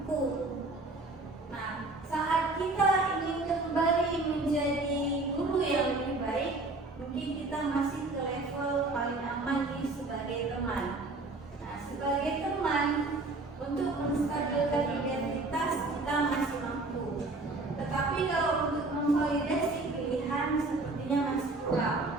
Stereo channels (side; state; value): left; quieter; 3.2 dB